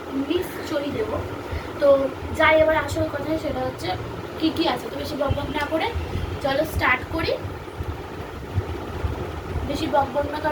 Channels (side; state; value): both; identical; correlation 1.00